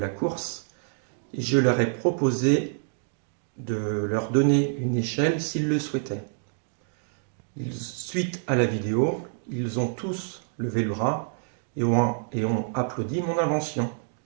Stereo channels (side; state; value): left; silent; digital silence